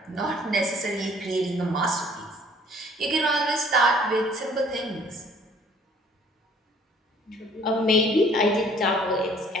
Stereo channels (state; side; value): normal; both; correlation 0.57